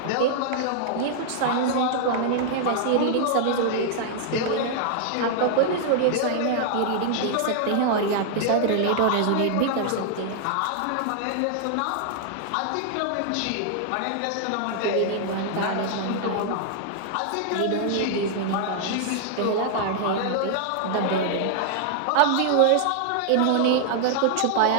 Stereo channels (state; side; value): different; both; correlation -0.01